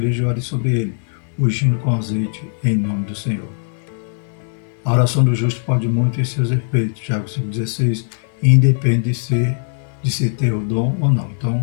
e ore sobre ele, ungindo com azeite em nome do Senhor. A oração do justo pode muito em seus efeitos. Tiago 5,16, independe de se ter o dom ou não.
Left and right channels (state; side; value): silent; right; 58 dB below the other